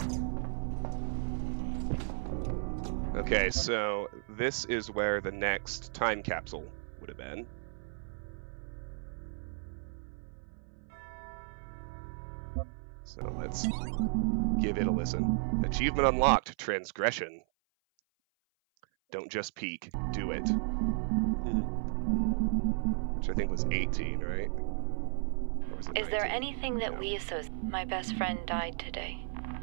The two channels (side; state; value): left; silent; 55 dB below the other